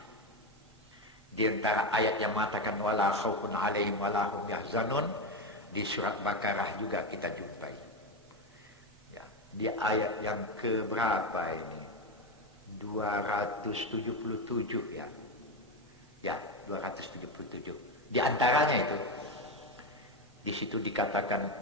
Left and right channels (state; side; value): normal; both; correlation 0.13